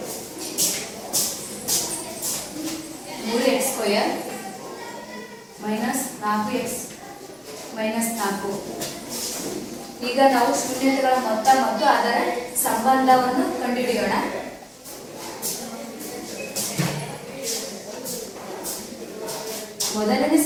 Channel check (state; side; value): identical; both; correlation 1.00